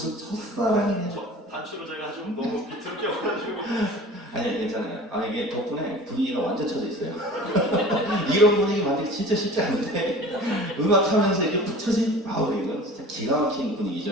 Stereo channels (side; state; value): both; normal; correlation 0.41